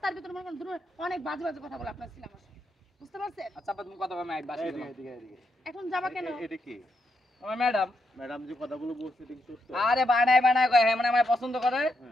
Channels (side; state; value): both; normal; correlation 0.81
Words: ভিতরে মনে করেন অনেক বাজে বাজে কথা বলে আপনার ছেলে আমার সাথে বুঝতে পারছেন আচ্ছা তুমি কথা বলবে আমি বাসে এদিকে এখন যাবা কেন এটা কি আমার ম্যাডাম ম্যাডাম যে কথাগুলো বলছে এটা কি সত্য আরে বানায় কয় হ্যাঁ মানে আমার পছন্দ করে